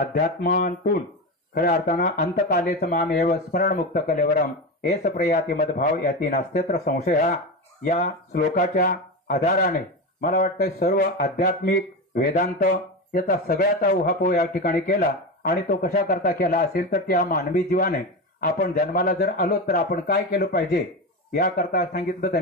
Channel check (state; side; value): normal; both; correlation 0.20